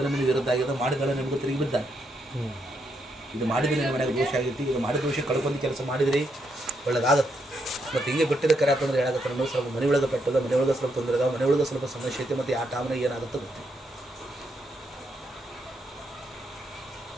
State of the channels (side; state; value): both; normal; correlation 0.78